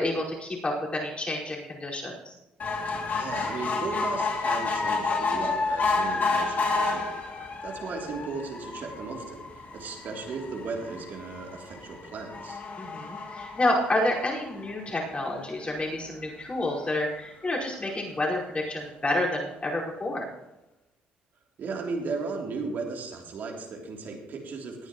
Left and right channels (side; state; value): both; normal; correlation 0.73